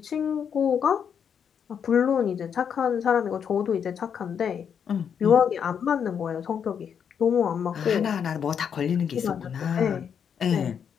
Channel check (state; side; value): quieter; right; 7.6 dB